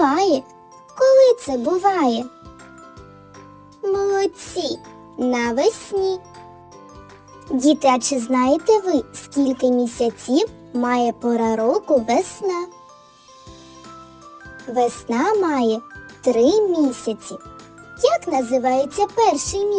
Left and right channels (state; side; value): identical; both; correlation 1.00